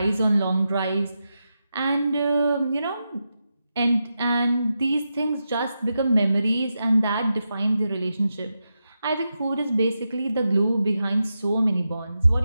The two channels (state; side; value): inverted; both; correlation -0.88